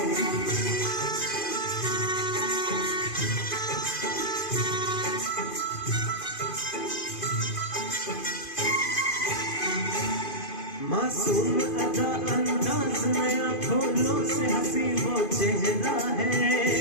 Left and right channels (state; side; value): late; right; 2.5 ms